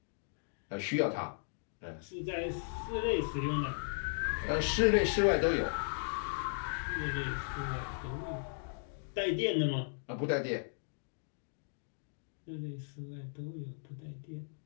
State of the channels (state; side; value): silent; right; digital silence